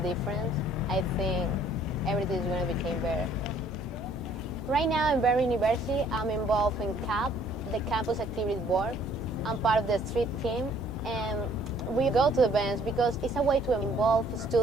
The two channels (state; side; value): noise; right; hum, 25 dB below the sound